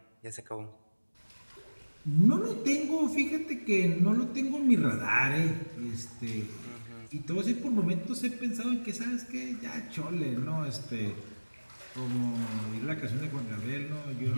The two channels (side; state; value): both; inverted; correlation -1.00